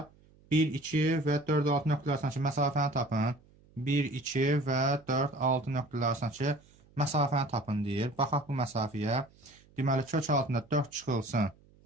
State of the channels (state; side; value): noise; right; hum, 29 dB below the sound